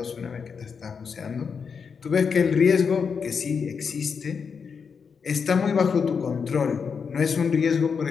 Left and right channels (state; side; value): quieter; right; 6.0 dB